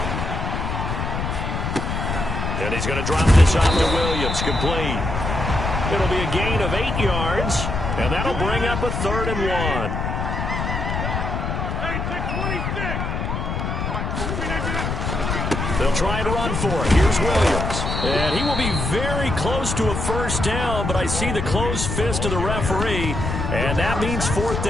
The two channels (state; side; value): noise; left; rumble, 2 dB below the sound